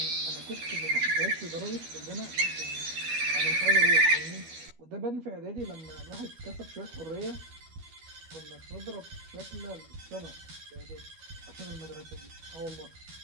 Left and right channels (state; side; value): late; left; 12 ms